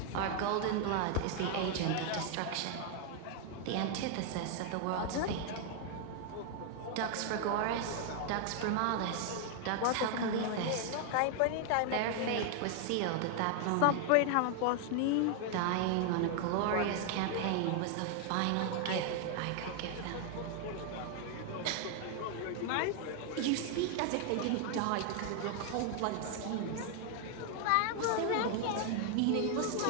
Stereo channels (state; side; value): different; both; correlation 0.00